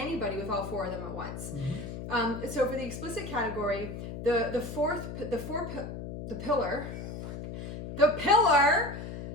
with all 4 of them at once. So for the explicit category, the pillar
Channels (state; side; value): noise; left; hum, 8 dB below the sound